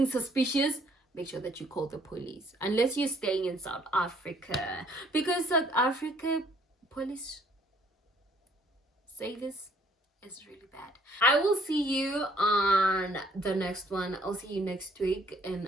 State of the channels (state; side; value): normal; both; correlation 0.62